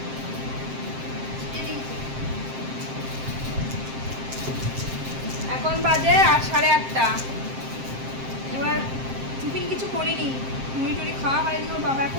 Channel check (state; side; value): late; left; 7.6 ms